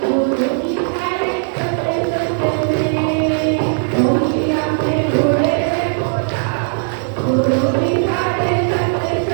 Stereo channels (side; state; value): left; silent; 68 dB below the other